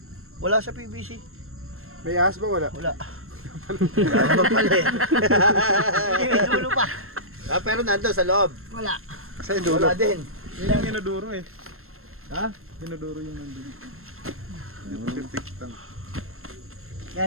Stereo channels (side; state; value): left; late; 0.62 ms